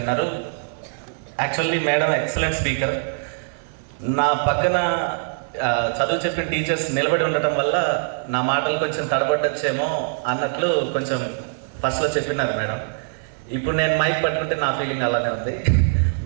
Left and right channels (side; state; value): left; silent; 56 dB below the other